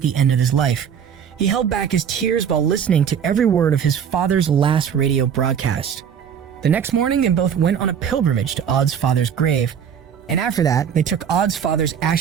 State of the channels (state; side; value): quieter; left; 8.0 dB